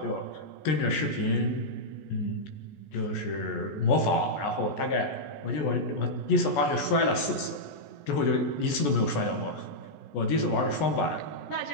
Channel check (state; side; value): late; right; 14 ms